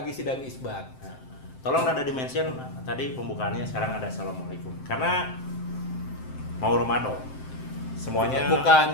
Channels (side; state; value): right; late; 7.7 ms